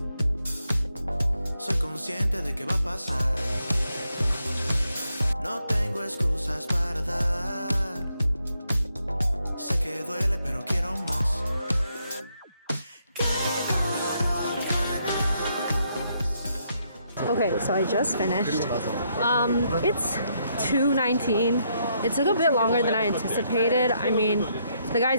Soy consciente de que va a pasar. No tengo excusas para dar. Sé que duele, pero quiero más. Okay, so I just finished. It's 2:19. It took a bit longer than I anticipated. I mean, the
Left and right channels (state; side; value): inverted; both; correlation -0.76